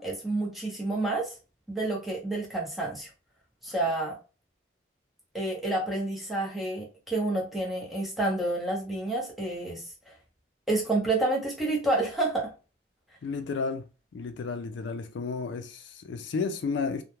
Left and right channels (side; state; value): both; normal; correlation 0.42